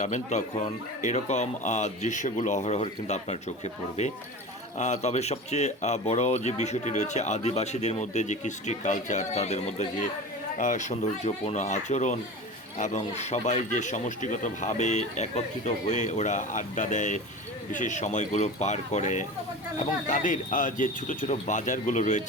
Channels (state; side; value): normal; both; correlation 0.32